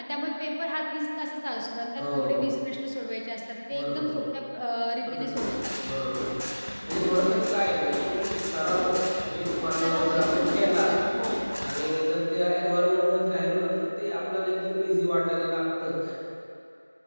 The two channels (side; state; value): both; inverted; correlation -1.00